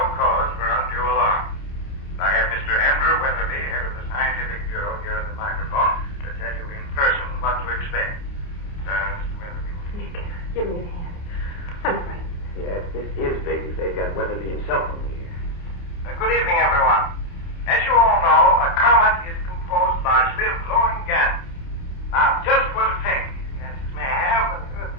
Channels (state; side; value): late; right; 29 ms